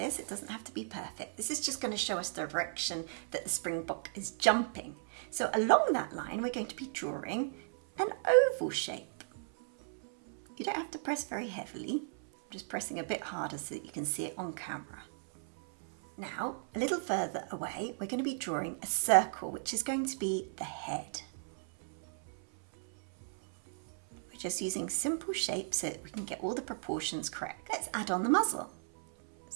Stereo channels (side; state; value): left; silent; 54 dB below the other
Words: It doesn't have to be perfect. This is just going to show us the direction that the Springbok is jumping. So along that line we're going to be drawing an oval shape. You don't have to press very heavily. I'm just pressing a bit harder so that you can see it on camera. Now, a little further away, we're going to be drawing a circle, which is going to be the head. We're just using simple shapes so that we can get all the proportions correct. Let's add on the muzzle.